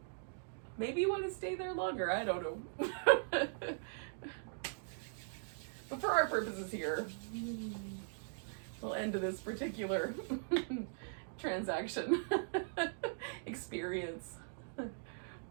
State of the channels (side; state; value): left; silent; digital silence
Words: Maybe you want to stay there longer, I don't know. But for our purposes here, we'll end this particular transaction experience.